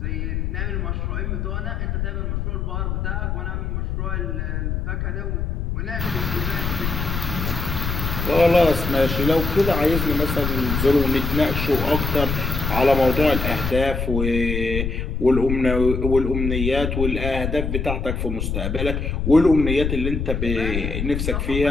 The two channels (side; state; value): left; noise; rumble, 2 dB below the sound